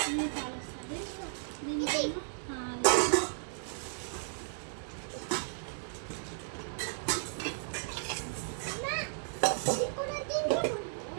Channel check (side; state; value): left; silent; 55 dB below the other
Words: ఈ కాలు వస్తుంది. దీనికేమో